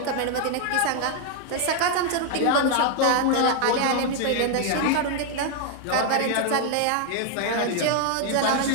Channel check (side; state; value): both; different; correlation 0.00